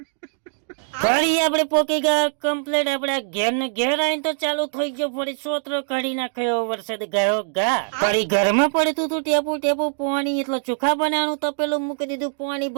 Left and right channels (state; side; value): silent; left; digital silence